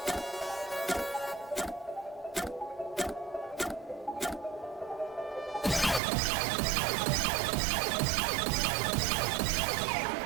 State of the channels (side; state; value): left; drops out; at 6.0 s